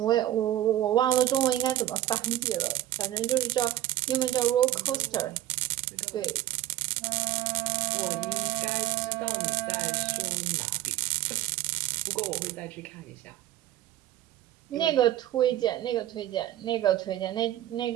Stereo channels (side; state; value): left; quieter; 13.8 dB